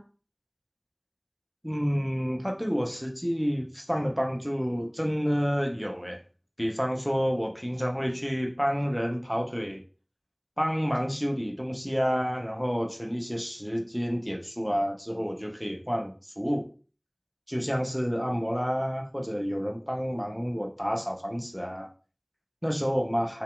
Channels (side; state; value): both; identical; correlation 1.00